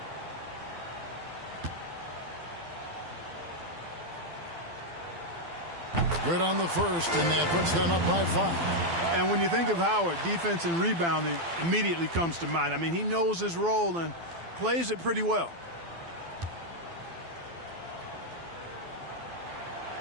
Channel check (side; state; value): left; late; 12 ms